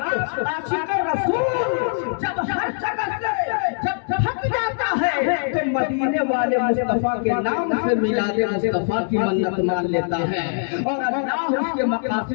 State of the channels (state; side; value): silent; right; digital silence